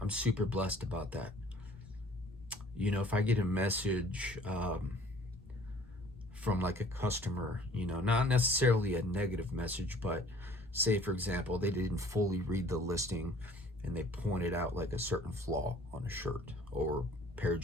I'm super blessed about that. If I get a message from like a customer, not necessarily a negative message, but say for example, they didn't fully read the listing and they pointed out like a certain flaw on a shirt or pair of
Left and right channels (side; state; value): both; normal; correlation 0.53